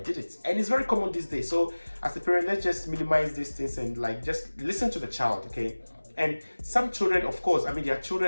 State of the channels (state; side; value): inverted; both; correlation -1.00